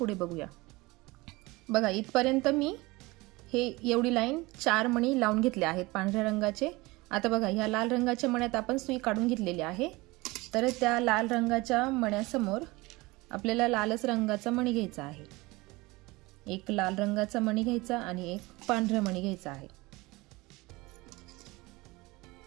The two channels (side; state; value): left; quieter; 22.4 dB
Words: बघूया। बघा इथपर्यंत मी हे एवढी लाईन 4 मणी लावून घेतले आहेत पांढऱ्या रंगाचे। आता बघा ह्या लाल रंगाच्या मण्यात आपण सुई काढून घेतलेली आहे, तर त्या लाल रंगाच्या मण्यासमोर आपल्याला लालच रंगाचा मणी घ्यायचा आहे। एक लाल रंगाचा मणी घ्यायचा आणि एक पांढरा मणी घ्यायचा आहे।